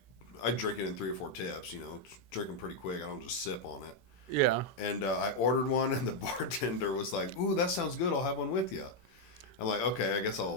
drink it in 3 or 4 tips. Drink them pretty quick. I don't just sip on it. Yeah. And I ordered one, and the bartender was like, "Ooh, that sounds good. I'll have one with you." I'm like, "Okay, I guess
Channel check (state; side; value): late; right; 16 ms